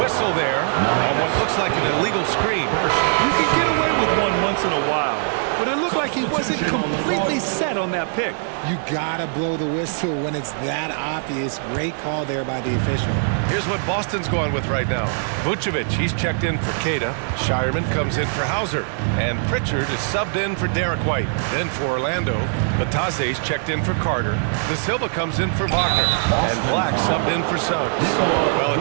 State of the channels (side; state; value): left; silent; digital silence